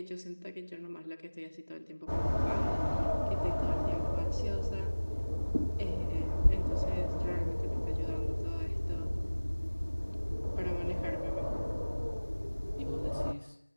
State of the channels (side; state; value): both; inverted; correlation -1.00